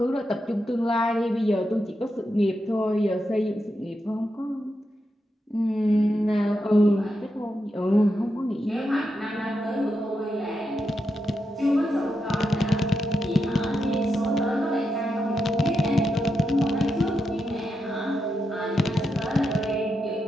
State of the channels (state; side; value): normal; both; correlation 0.86